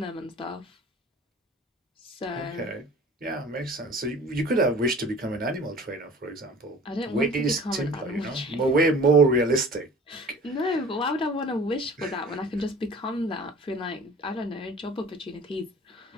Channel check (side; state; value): both; normal; correlation 0.45